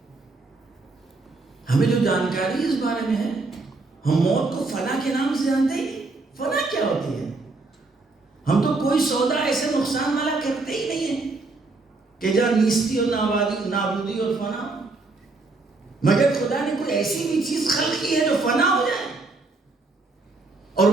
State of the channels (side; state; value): left; quieter; 3.5 dB